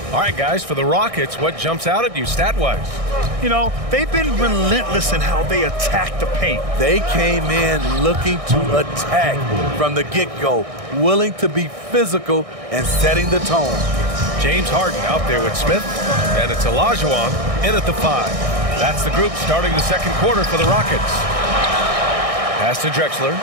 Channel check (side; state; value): left; late; 1.6 ms